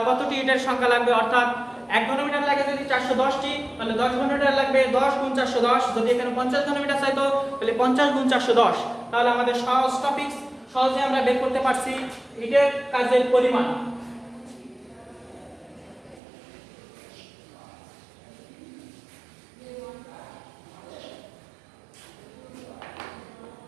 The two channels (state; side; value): drops out; left; at 16.2 s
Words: কতটি ইটের সংখ্যা লাগবে। অর্থাৎ 1 ঘনমিটার লাগে যদি 410টি, তাহলে 10 ঘনমিটার লাগবে 10 গুণ 410। যদি এখানে 50 ঘনমিটার চাইতো তাহলে 50 গুণ 410। তাহলে আমাদের সহজ টপিক সহজে আমরা বের করতে পারছি ইটের কাজের পরিমাণ।